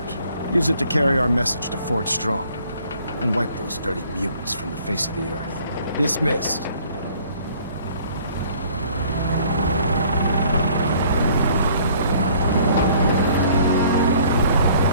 Use it to carry our message to Fort Strong, and wipe those dirty mutants from the face of the earth. Dismissed.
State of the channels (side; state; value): both; inverted; correlation -0.57